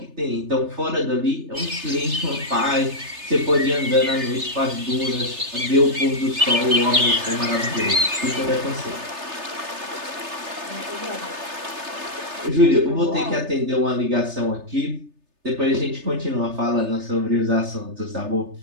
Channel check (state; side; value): late; left; 3.3 ms